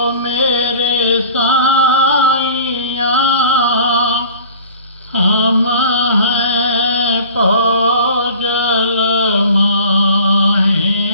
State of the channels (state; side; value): inverted; both; correlation -0.44